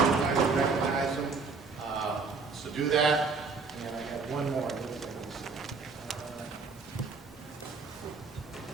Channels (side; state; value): left; quieter; 4.6 dB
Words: good time to recognize them. So do that. And I have one more.